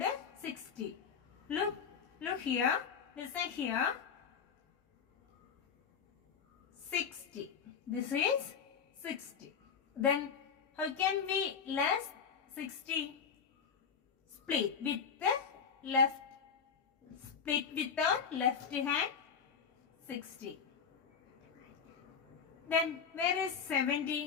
60. Look here. Listen here. 60. This is 60. Then how can we less 60? Split with the left. Split with our left hand. 60. Then where is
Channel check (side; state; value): right; quieter; 6.6 dB